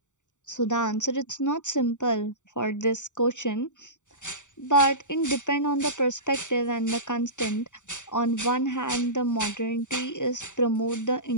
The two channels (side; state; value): right; late; 0.85 ms